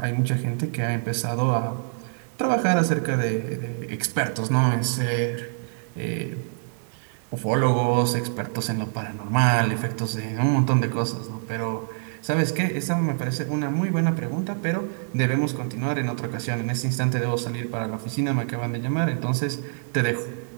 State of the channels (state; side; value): silent; left; digital silence